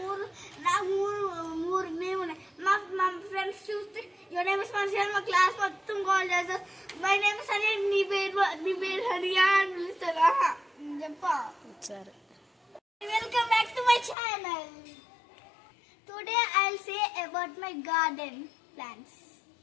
మూడు నేమ్ ఉన్నాయి. మా ఫ్రెండ్స్ చూస్తే యువర్ నేమ్ ఇస్ మనిషి మా క్లాస్ మొత్తం కాల్ చేస్తారు. మై నేమ్ ఇస్ హరియా, నీ పేరు హరియా అని పిలుస్తారా చెప్పా. సరే. Welcome back to my channel. Today I'll say about my garden plants.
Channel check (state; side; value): drops out; right; at 14.2 s